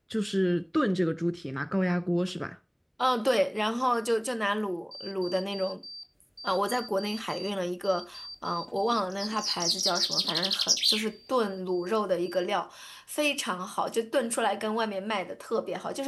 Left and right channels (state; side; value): identical; both; correlation 1.00